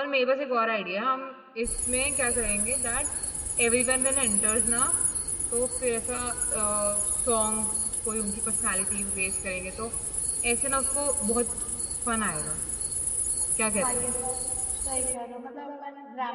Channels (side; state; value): both; identical; correlation 1.00